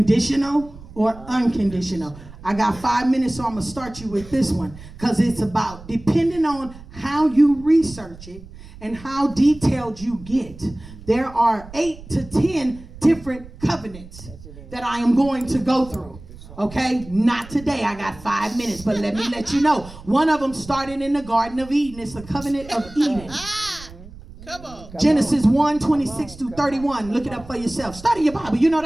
or unconditional. I got 5 minutes, so I'm going to start you with this one. Because it's about, depending on how you research it and how detailed you get, there are 8 to 10 different covenants that I am going to go through. Okay? Not today. I got 5 minutes, but let me let you know. One of them started in the Garden of Eden. It's the covenant of Eden. Come on. Genesis 1:26-31. Look it up for yourself. Study your Bible. You know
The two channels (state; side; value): noise; right; rumble, 17 dB below the sound